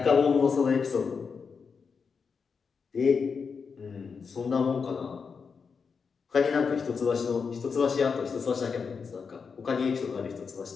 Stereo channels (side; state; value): right; quieter; 5.6 dB